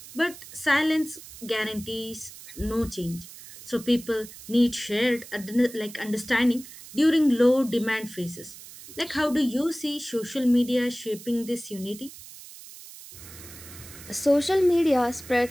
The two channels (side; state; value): right; noise; hiss, 16 dB below the sound